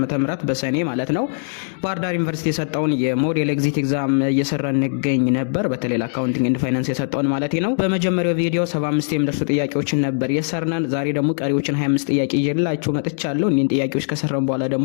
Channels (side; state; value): right; silent; digital silence